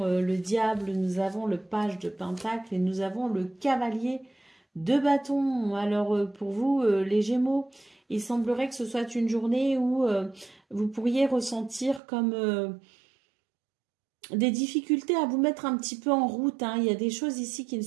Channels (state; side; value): drops out; left; at 12.0 s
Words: le diable, nous avons le page de pentacle et nous avons le cavalier de bâton. Alors, pour vous, les Gémeaux, il semblerait que ce soit une journée où vous pourriez ressentir comme des difficultés à vous mettre un petit peu en route, hein. Il y a des choses ici qui ne